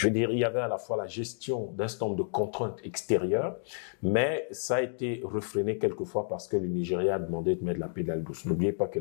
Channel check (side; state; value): right; silent; digital silence